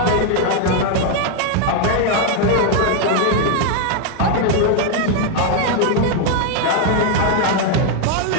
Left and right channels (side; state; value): both; different; correlation 0.00